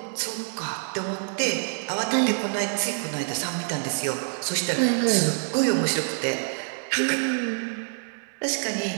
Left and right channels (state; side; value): silent; left; 61 dB below the other